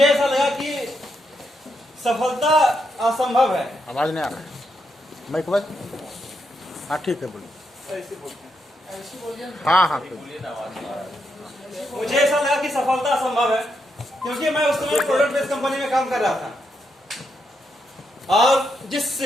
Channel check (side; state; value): both; normal; correlation 0.81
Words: ऐसा लगा कि सफलता असंभव है। आवाज नहीं आ रहा है, माइक बस। हाँ ठीक है, बोलिए। हाँ मुझे ऐसा लगा कि सफलता असंभव है, क्योंकि मैं उस समय प्रोडक्ट बेस्ड कंपनी में काम कर रहा था और जिस